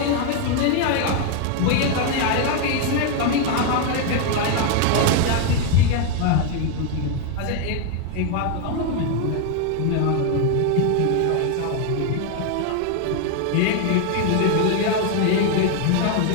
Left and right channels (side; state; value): both; different; correlation 0.01